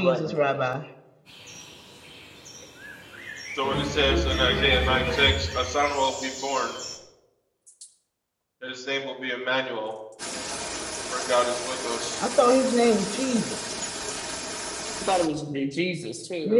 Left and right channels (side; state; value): both; identical; correlation 1.00